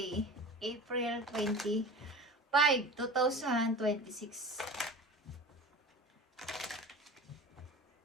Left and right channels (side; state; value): both; normal; correlation 0.35